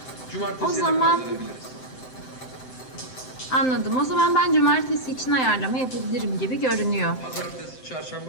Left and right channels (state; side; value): late; right; 7.8 ms